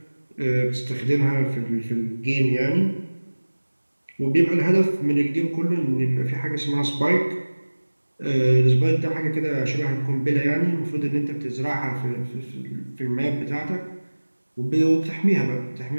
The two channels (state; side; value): inverted; both; correlation -1.00